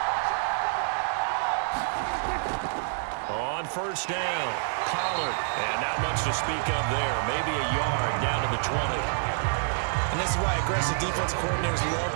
On first down, Pollard. And not much to speak of there. Maybe a yard down to the 20. And this is why aggressive defense coordinators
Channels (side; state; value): left; silent; 60 dB below the other